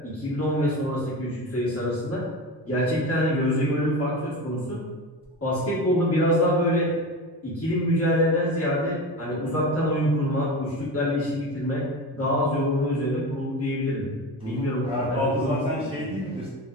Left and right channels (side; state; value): both; normal; correlation 0.27